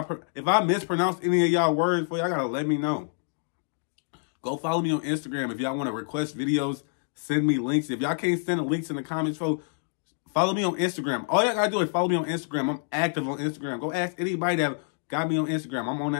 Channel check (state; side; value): silent; right; 60 dB below the other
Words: If I mispronounce any of y'all words for y'all, gotta let me know. Go follow me on Instagram. If y'all want to request videos, send me links. If y'all can't send the links in the comments, folks, follow me on Instagram. All y'all gotta do is follow me on Instagram. I'm active on Instagram. Go ask anybody that got me on Instagram. I'm on